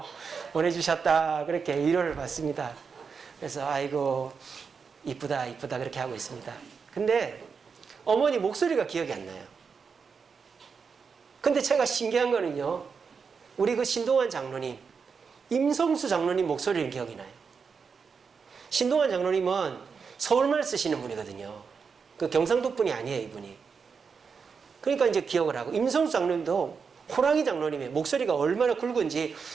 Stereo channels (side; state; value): left; quieter; 5.7 dB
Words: 보내주셨다. 그렇게 위로를 받습니다. 그래서 아이고 이쁘다 그렇게 하고 있습니다. 근데 어머니 목소리가 기억이 안 나요. 근데 제가 신기한 거는요, 우리 그 신동환 장로님, 임성수 장로님 목소리는 기억이 나요. 신동환 장로님은 서울말 쓰시는 분이거든요. 그 경상도 분이 아니에요, 이분이. 그러니까 이제 기억을 하고, 임성수 장로님도 호랑이 장로님의 목소리가 얼마나 굵은지,